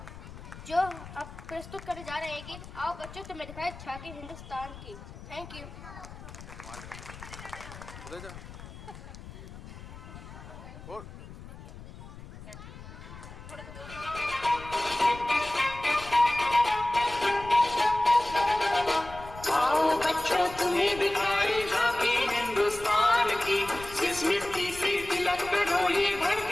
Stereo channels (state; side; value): noise; left; rumble, 15 dB below the sound